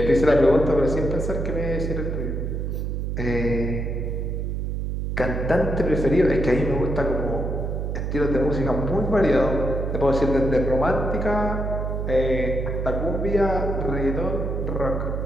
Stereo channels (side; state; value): right; noise; hum, 2 dB below the sound